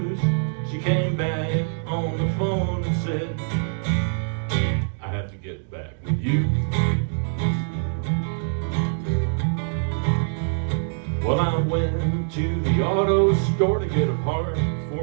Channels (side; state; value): left; silent; digital silence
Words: She came back on the phone and said, "I have to get back with you." Well, I went to the auto store to get a part